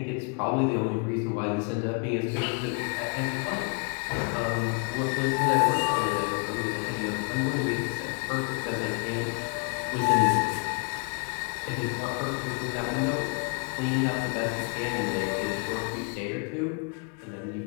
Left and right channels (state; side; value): quieter; right; 37.3 dB